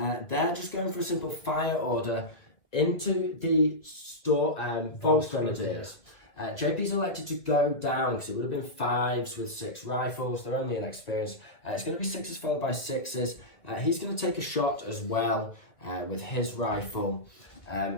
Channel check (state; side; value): late; right; 2.2 ms